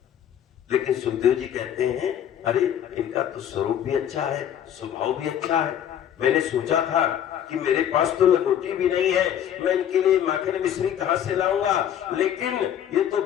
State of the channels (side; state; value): right; quieter; 9.9 dB